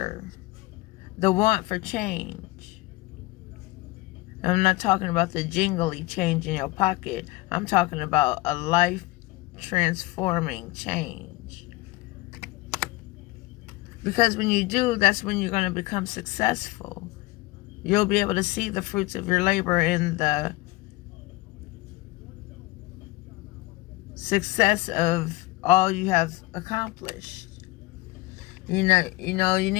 the want for change. I'm not talking about the jingly change in your pocket. I'm talking about a life transforming change. Because when you do, that's when you're going to become successful. You'll be able to see the fruits of your labor in the success of all you have accomplished. You know, you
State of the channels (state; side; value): quieter; right; 20.7 dB